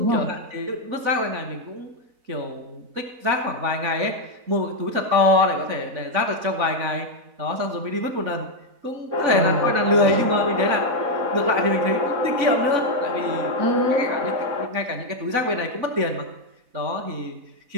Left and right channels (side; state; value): left; late; 4.0 ms